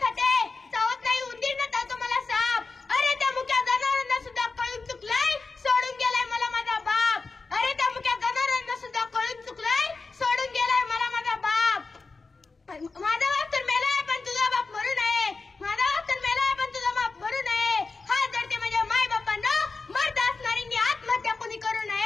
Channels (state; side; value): quieter; right; 4.1 dB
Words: खाते, चावत नाही उंदीर न चावतो मला साप. अरे त्या मुक्या जनावरांना सुद्धा कळून चुकलाय, सोडून गेलाय मला माझा बाप. अरे त्या मुक्या जनावरांना सुद्धा कळून चुकलाय, सोडून गेलाय मला माझा बाप. माझा बाप तर मेलाय पण तुझा बाप मरू नये, माझा बाप तर मेलाय पण तुझा बाप मरू नये. हात जडते माझ्या माय बापांना, मर्द असणाऱ्यांनी आत्महत्या कोणी करू